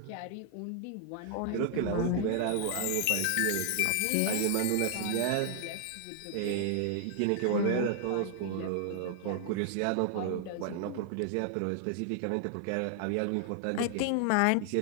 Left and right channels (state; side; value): different; both; correlation 0.00